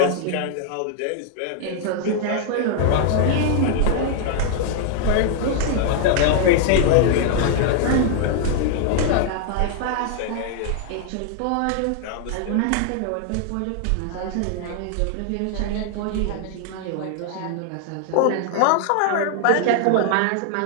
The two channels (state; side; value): different; both; correlation 0.00